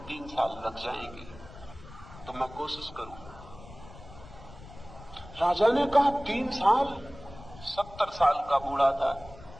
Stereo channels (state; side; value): noise; left; rumble, 18 dB below the sound